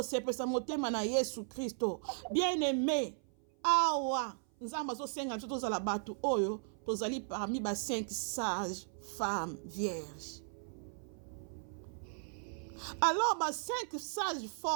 motema na Yesu Kristo. Bien-aimé, awa Nzambe azosenga biso tozala bato oyo tozali parmi ba 5 sages femmes vierges. Alors ba 5 sages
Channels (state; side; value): silent; left; 53 dB below the other